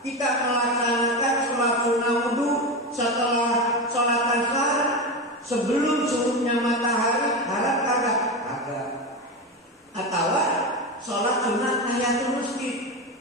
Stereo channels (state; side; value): normal; both; correlation 0.19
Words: Kita melaksanakan sholat sunnah wudhu setelah sholat asar sebelum surutnya matahari, haram kagak? Kagak. Atau sholat sunnah tahiyatul masjid,